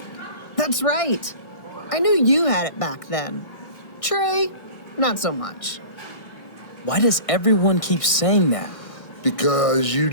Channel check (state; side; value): late; right; 1.6 ms